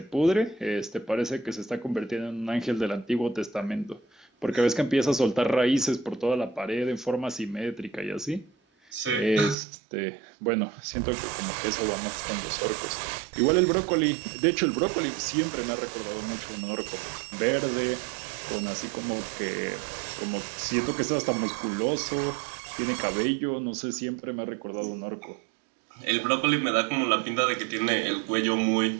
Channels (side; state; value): left; drops out; at 9.6 s